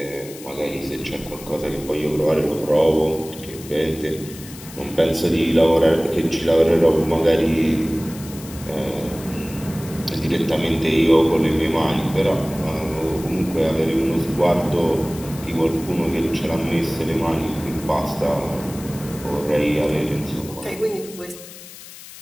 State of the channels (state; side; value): noise; left; hiss, 16 dB below the sound